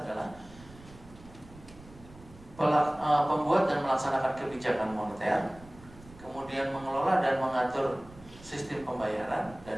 adalah pembuat dan melaksanakan kebijakan moneter, kemudian mengelola dan mengatur sistem pembayaran,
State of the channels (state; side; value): noise; right; rumble, 21 dB below the sound